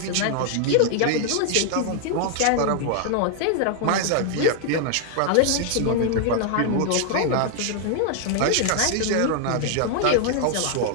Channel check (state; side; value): different; both; correlation 0.00